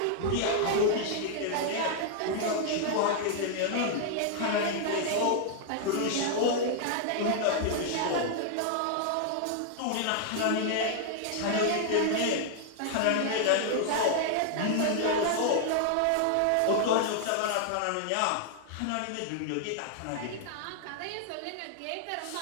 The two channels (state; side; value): different; both; correlation -0.01